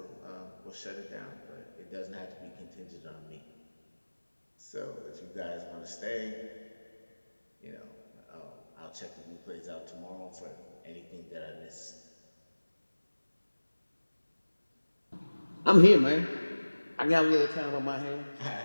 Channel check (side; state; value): both; inverted; correlation -1.00